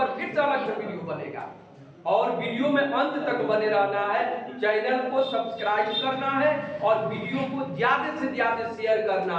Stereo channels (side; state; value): both; identical; correlation 1.00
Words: फिर से अलग से वीडियो बनेगा। और वीडियो में अंत तक बने रहना है, चैनल को सब्सक्राइब करना है और वीडियो को ज्यादा से ज्यादा शेयर